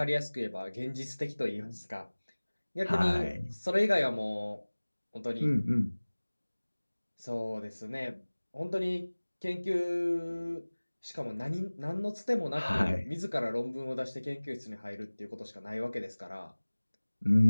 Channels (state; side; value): inverted; both; correlation -1.00